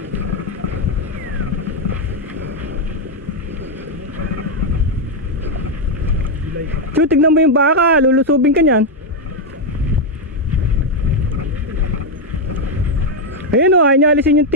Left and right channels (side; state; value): both; normal; correlation 0.03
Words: Chu, tignan mo yung baka. Lulusubin ka niyan. Ayun o, ayaw niya alisin yung